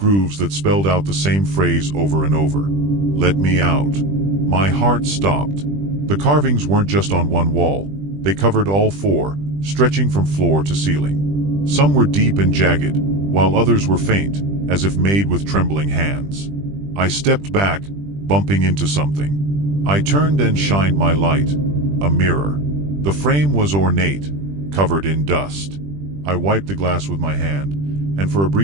that spelled out the same phrase over and over. "Let me out." My heart stopped. The carvings weren't just on one wall, they covered all four, stretching from floor to ceiling. Some were deep and jagged, while others were faint, as if made with trembling hands. I stepped back, bumping into something. I turned and shined my light. A mirror. The frame was ornate, covered in dust. I wiped the glass with my hand, and for a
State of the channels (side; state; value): left; late; 20 ms